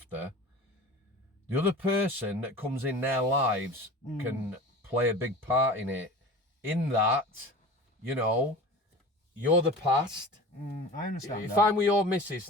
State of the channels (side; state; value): both; normal; correlation 0.36